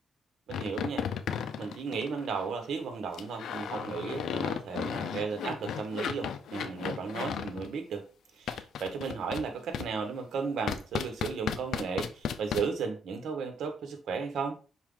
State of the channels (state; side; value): normal; both; correlation 0.66